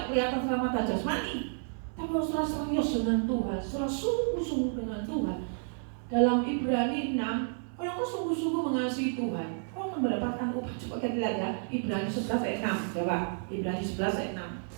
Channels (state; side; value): silent; left; 57 dB below the other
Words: kelihatan sama mata jasmani, tapi harus serius dengan Tuhan, sungguh-sungguh dengan Tuhan. Dalam Ibrani 6, kalau kau sungguh-sungguh mengasihi Tuhan, kau akan mendapatkan upah. Coba kita lihat ya, Ibrani 11 ayat 6, coba. Ibrani 11 ayat